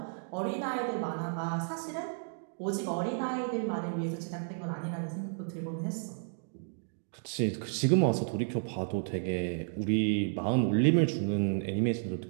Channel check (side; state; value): left; silent; digital silence